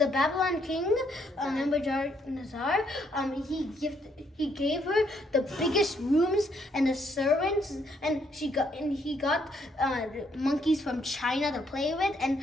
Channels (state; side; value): normal; both; correlation 0.71